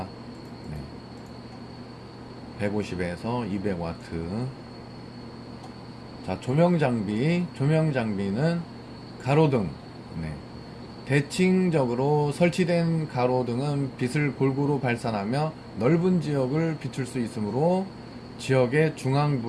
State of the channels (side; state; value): both; identical; correlation 1.00